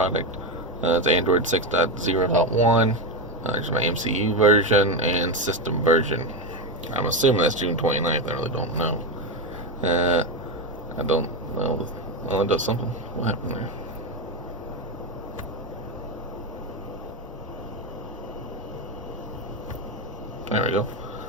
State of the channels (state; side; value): normal; both; correlation 0.11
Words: It's Android 6.0.1. There's my MCU version and system version. I'm assuming that's June 29th. I really don't know. I don't know. Oh, it does something. What happened there? There we go.